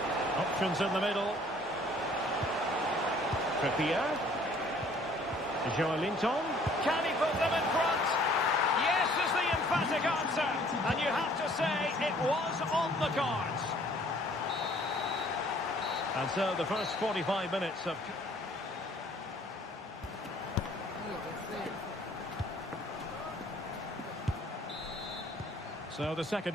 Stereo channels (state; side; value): normal; both; correlation 0.57